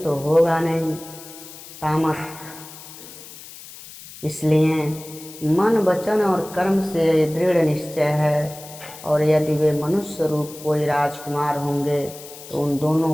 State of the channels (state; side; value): noise; left; hiss, 16 dB below the sound